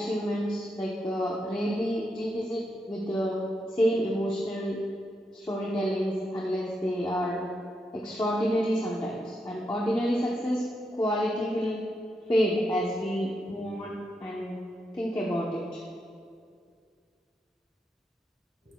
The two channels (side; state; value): both; normal; correlation 0.83